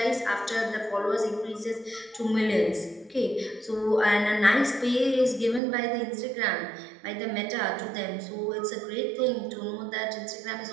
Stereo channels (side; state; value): left; drops out; at 5.6 s